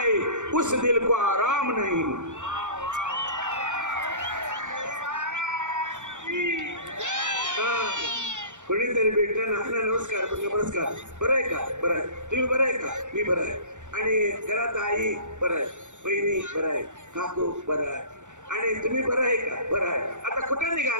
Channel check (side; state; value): left; late; 0.85 ms